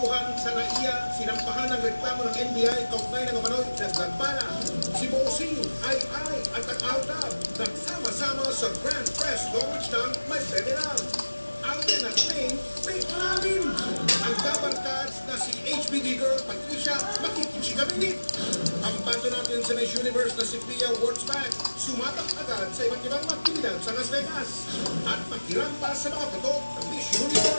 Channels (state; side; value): inverted; both; correlation -1.00